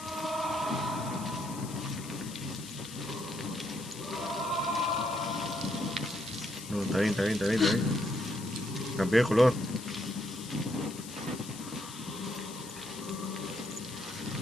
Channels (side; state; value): left; noise; hiss, 13 dB below the sound